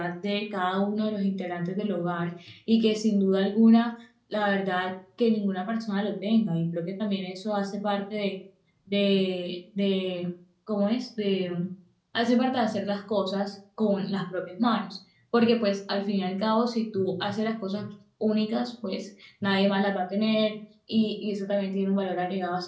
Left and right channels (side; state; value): both; identical; correlation 1.00